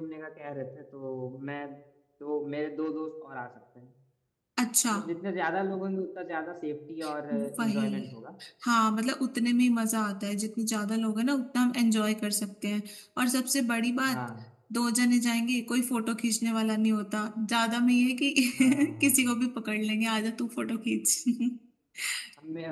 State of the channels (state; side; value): identical; both; correlation 1.00